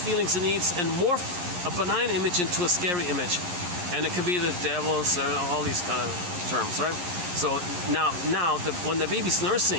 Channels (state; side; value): late; left; 11 ms